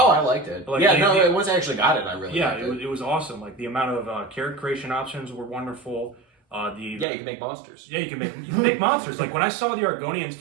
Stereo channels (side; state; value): left; drops out; at 7.1 s